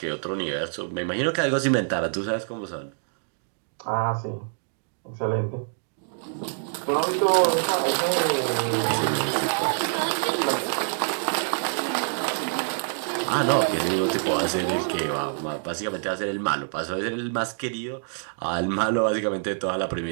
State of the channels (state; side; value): silent; left; digital silence